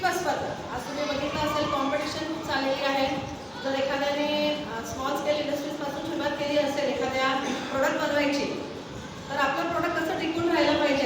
स्पर्धा. आज तुम्ही बघितलं असेल, कॉम्पिटिशन खूप चाललेली आहे. जर एखाद्याने स्मॉल स्केल इंडस्ट्रीजपासून सुरुवात केली असेल एखाद्या प्रोडक्ट बनवायची, तर आपलं प्रोडक्ट कसं टिकून राहिलं पाहिजे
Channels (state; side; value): identical; both; correlation 1.00